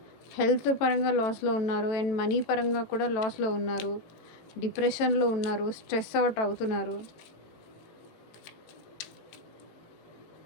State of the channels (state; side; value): late; right; 18 ms